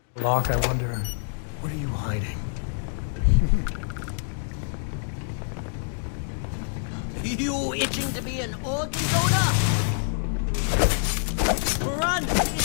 Locke, I wonder, what are you hiding? You itching to be an organ donor? Run!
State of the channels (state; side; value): silent; right; digital silence